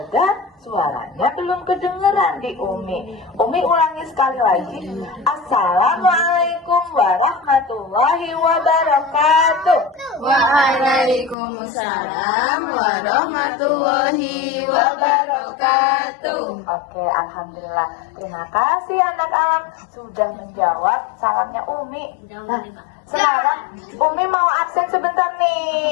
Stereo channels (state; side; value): drops out; right; at 11.4 s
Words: suaranya belum kedengeran di Umi. Umi ulangi sekali lagi. Assalamualaikum warahmatullahi wabarakatuh. Waalaikumsalam warahmatullahi wabarakatuh. Oke, alhamdulillah. Terima kasih anak-anak sudah menjawab salamnya Umi. Nah, sekarang Umi mau absen sebentar